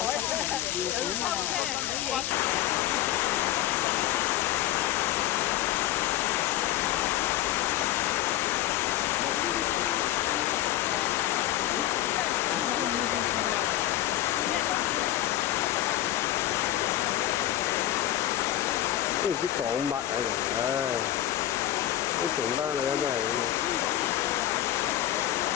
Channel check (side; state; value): right; quieter; 13.7 dB